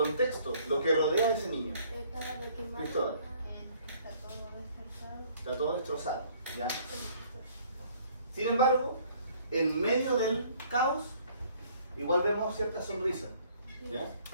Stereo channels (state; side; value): inverted; both; correlation -0.59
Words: lo que rodea a ese niño. Estaba de quemar. Cristóbal. Está todo descansado. Está todo destrozado, ¿ya? Sin embargo, en medio del caos, igual vemos cierta sonrisa, ¿ya?